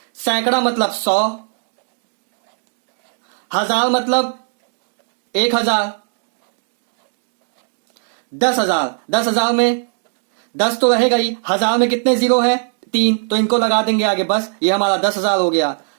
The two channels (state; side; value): silent; left; digital silence